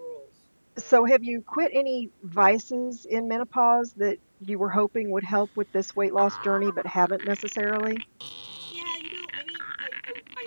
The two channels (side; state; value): both; inverted; correlation -1.00